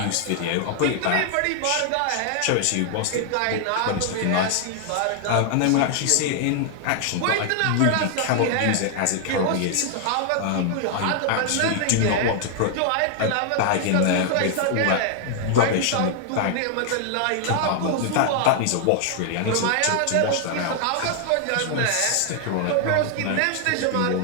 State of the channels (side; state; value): both; different; correlation 0.00